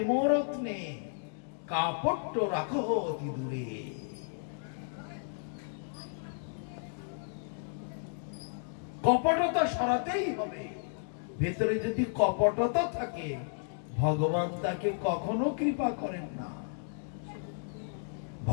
রত্নে কাপট্য রাখো অতি দূরে। কপটতা সরাতেই হবে। ভেতরে যদি কপটতা থাকে, ভগবান তাকে কখনো কৃপা করেন না।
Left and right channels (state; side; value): silent; right; digital silence